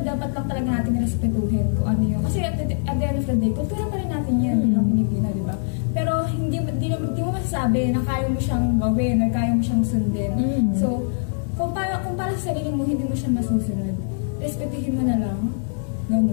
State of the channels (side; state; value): right; silent; digital silence